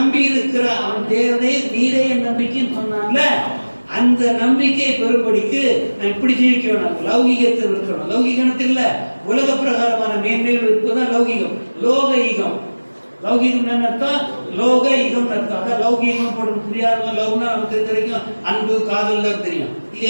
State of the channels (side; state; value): both; inverted; correlation -1.00